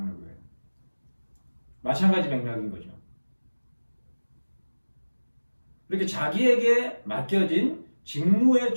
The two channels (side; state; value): both; inverted; correlation -1.00